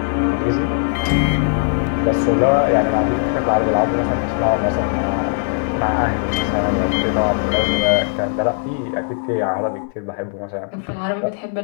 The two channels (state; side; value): silent; right; 64 dB below the other